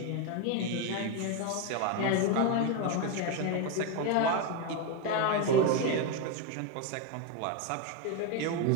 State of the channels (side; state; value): both; different; correlation 0.02